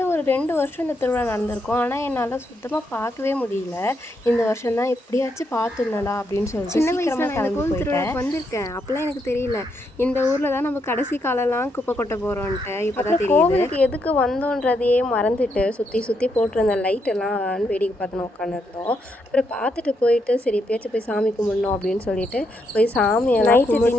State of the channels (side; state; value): both; normal; correlation 0.78